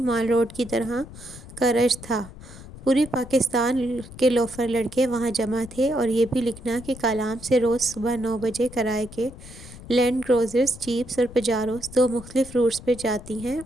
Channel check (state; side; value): noise; left; rumble, 16 dB below the sound